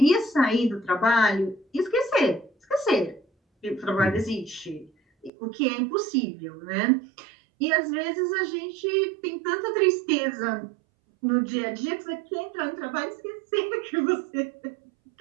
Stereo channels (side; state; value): left; drops out; at 5.3 s